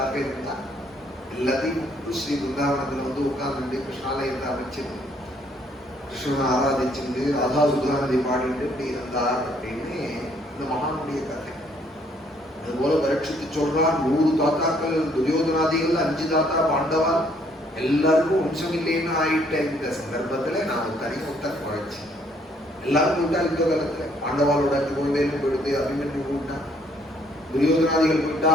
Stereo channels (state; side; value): normal; both; correlation 0.66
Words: இருந்தார். எல்லாத்தையும் ஸ்ரீ பிருந்தாவனத்துல வந்து உட்கார்ந்து கிருஷ்ணாலயத்தை அமைச்சு கிருஷ்ணனை ஆராதிச்சுட்டு ராதா சுதாநதி பாடிட்டு இப்படி இருந்தார் அப்படின்னு இந்த மகானுடைய கதை. அதுபோல பரீட்சித்து சொல்றார், 100 தாத்தாக்கள் துரியோதனாதிகள், 5 தாத்தா பாண்டவா, எல்லாருக்கும் வம்சம் இல்லைன்னு ஆயிட்ட இந்த சந்தர்ப்பத்துல நான் தனிமுத்தன் குறைச்சி எல்லாரும் போயிட்டா. இந்த காலத்துல பாண்டவாளோட 2 குழந்தைகளும் போயிடுது, அபிமன்யு போயிட்டான், துரியோதனாதிகள் போயிட்டா,